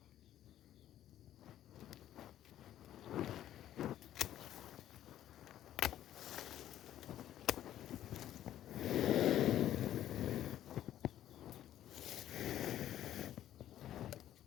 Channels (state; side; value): quieter; right; 12.1 dB